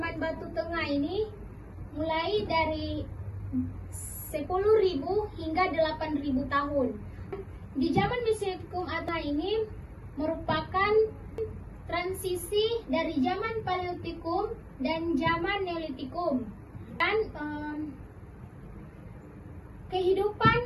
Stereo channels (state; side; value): identical; both; correlation 1.00